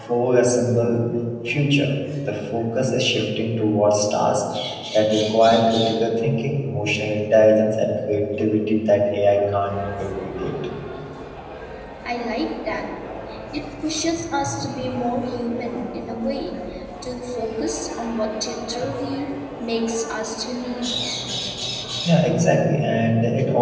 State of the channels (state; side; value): identical; both; correlation 1.00